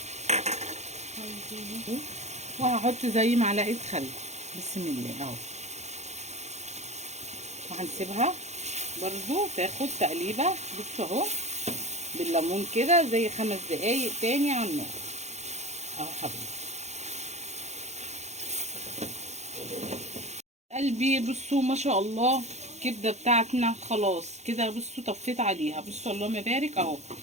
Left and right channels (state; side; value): late; left; 0.33 ms